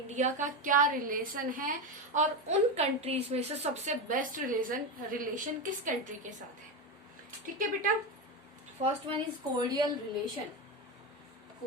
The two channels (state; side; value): normal; both; correlation 0.15